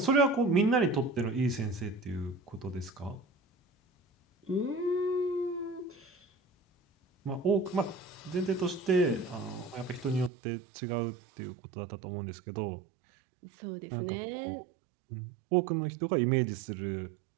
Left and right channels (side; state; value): left; drops out; at 10.3 s